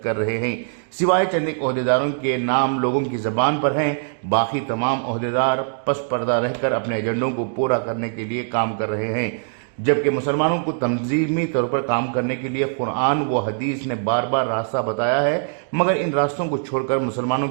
کر رہے ہیں۔ سوائے چند ایک عہدیداروں کے نام لوگوں کی زبان پر ہیں، باقی تمام عہدیدار پس پردہ رہ کر اپنے ایجنڈوں کو پورا کرنے کے لیے کام کر رہے ہیں۔ جبکہ مسلمانوں کو تنظیمی طور پر کام کرنے کے لیے قرآن و حدیث نے بار بار راستہ بتایا ہے، مگر ان راستوں کو چھوڑ کر مسلمانوں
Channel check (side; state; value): left; silent; digital silence